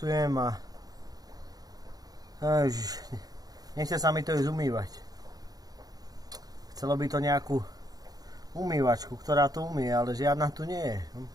a nechce sa mi to ísť umývať. Chcelo by to nejakú umývačku, ktorá to umie, ale žiadna tu nie je.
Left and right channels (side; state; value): left; late; 0.18 ms